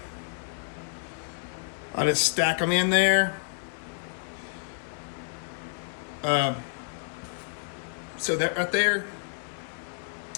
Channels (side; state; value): right; silent; 58 dB below the other